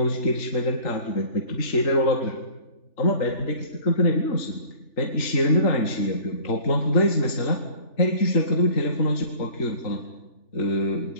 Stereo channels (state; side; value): late; right; 3.4 ms